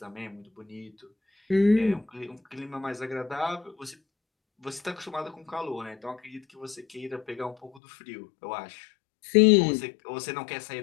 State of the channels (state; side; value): drops out; right; at 7.8 s